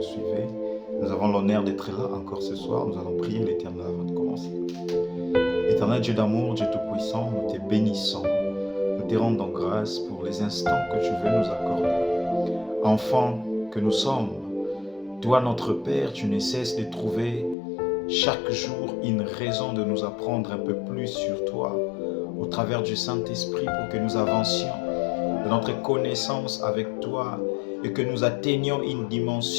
suivez. Nous avons l'honneur d'être là encore ce soir. Nous allons prier l'Éternel avant de commencer. Éternel Dieu d'amour, Dieu Tout-Puissant, nous te bénissons. Nous te rendons grâce pour les instants que tu veux nous accorder. Enfants que nous sommes, toi notre Père, tu ne cesses de trouver chaque jour une raison de nous apprendre un peu plus sur toi au travers du Saint-Esprit pour que nous avancions de notre connaissance avec toi et que nous atteignions une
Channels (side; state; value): right; drops out; at 17.6 s